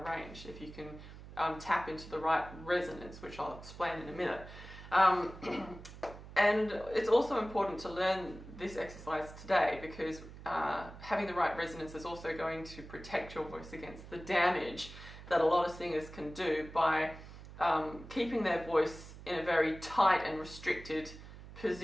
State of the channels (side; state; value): right; noise; hum, 15 dB below the sound